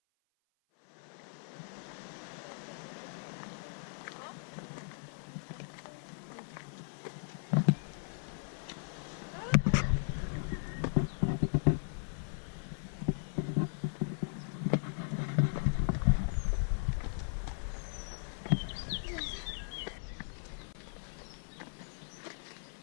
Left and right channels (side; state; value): right; silent; 53 dB below the other